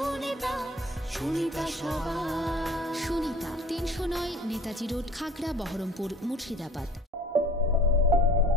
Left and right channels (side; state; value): both; normal; correlation 0.48